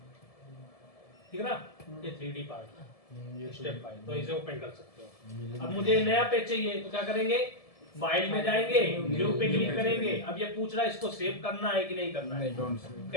ठीक है ना, ये 3D पार्ट स्टेप फाइल, तो इसे ओपन कर सकते हो। अब मुझे नया पेज चाहिए तो क्या करेंगे, फाइल में जाएंगे, न्यू पे क्लिक करेंगे। अब ये पूछ रहा है इसको सेव करना है कि नहीं करना है।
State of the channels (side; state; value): right; late; 1.7 ms